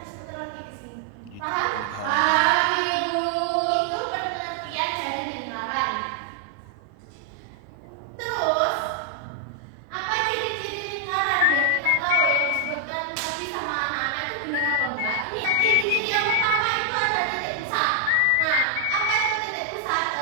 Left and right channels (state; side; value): different; both; correlation 0.00